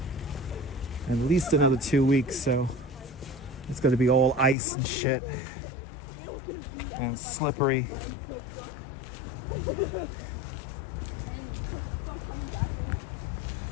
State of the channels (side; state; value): right; drops out; at 4.5 s